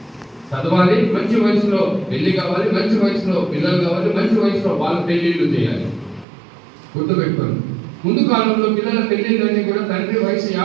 చదవాలి, మంచి వయసులో పెళ్లి కావాలి, మంచి వయసులో పిల్లలు కావాలి, మంచి వయసులో వాళ్ళ పెళ్లిళ్ళు చేయాలి. గుర్తుపెట్టుకోండి. ముందు కాలంలో పిల్లల పెళ్లిళ్ళన్నీ కూడా తండ్రి వయసు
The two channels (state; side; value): drops out; left; at 6.2 s